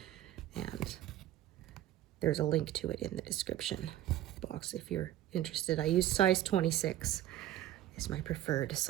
and there's a link to it in the description box if you're interested. I use size 26 is my preferred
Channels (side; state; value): left; quieter; 13.1 dB